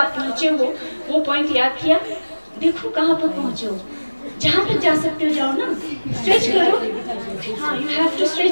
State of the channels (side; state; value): both; inverted; correlation -1.00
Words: पहुंचे हो वो पॉइंट याद किया, देखो कहां पर पहुंचे हो, जहां तक जा सकते हो जाओ ना, स्ट्रेच करो। हाँ, you have to